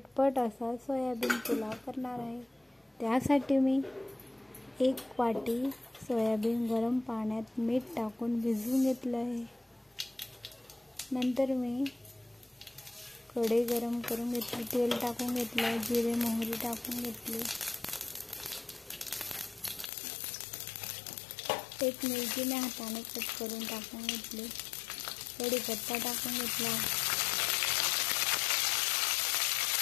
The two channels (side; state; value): right; drops out; at 19.9 s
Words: असा सोयाबीन पुलाव करणार आहे. त्यासाठी मी 1 वाटी सोयाबीन गरम पाण्यात मीठ टाकून भिजवून घेतलं आहे. नंतर मी कढई गरम करून घेतली, तेल टाकून घेतलं, जिरे मोहरी टाकून घेतली, एक मिरची मी हाताने कट करून टाकून घेतली, कढीपत्ता टाकून घेतला,